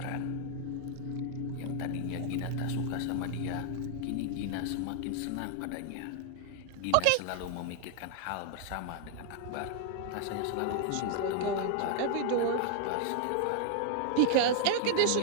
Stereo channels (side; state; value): both; different; correlation 0.00